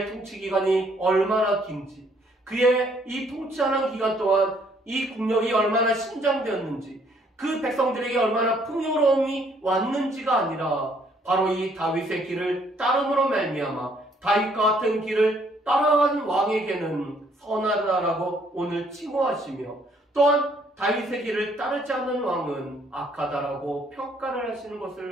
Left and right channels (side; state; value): both; normal; correlation 0.65